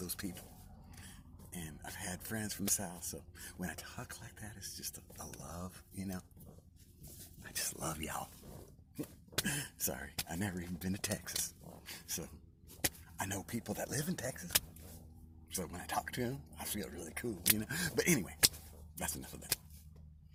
people. And I've had friends from the South, so when I talk like that, it's just a love, you know? I just love y'all. Sorry, I've never even been to Texas. So, I know people that live in Texas. So when I talk to them, I feel really cool, you know? But anyway, that's enough of that.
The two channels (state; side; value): identical; both; correlation 1.00